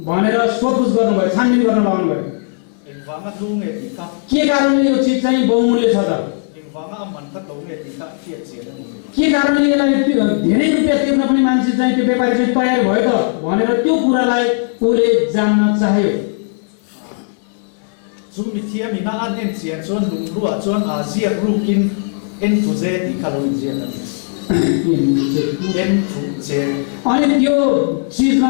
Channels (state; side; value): silent; right; 68 dB below the other